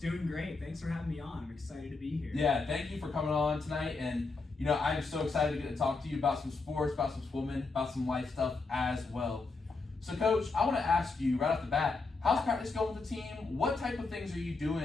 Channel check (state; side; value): quieter; right; 3.9 dB